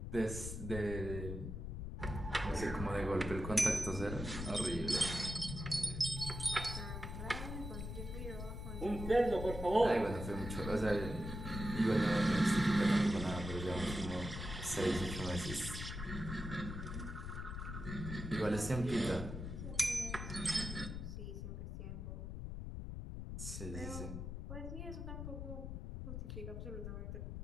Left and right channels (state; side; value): noise; left; rumble, 6 dB below the sound